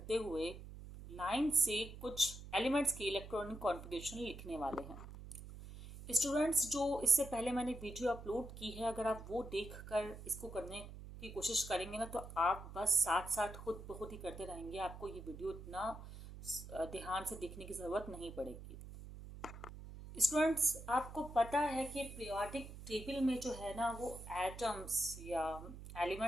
हुए लाइन से कुछ एलिमेंट्स की इलेक्ट्रॉनिक कॉन्फ़िगरेशन लिखने वाले हैं। स्टूडेंट्स, जो इससे पहले मैंने वीडियो अपलोड की है, अगर आप वो देख कर इसको करने की कोशिश करेंगे ना तो आप बस साथ साथ खुद ब खुद ही करते रहेंगे। आपको ये वीडियो इतना ध्यान से देखने की ज़रूरत नहीं पड़ेगी। स्टूडेंट्स, आपको पता है कि पीरियोडिक टेबल में जो है ना वो एटम्स या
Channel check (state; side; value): noise; right; hum, 12 dB below the sound